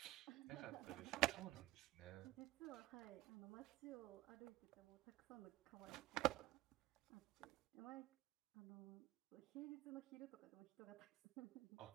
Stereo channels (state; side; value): quieter; left; 16.8 dB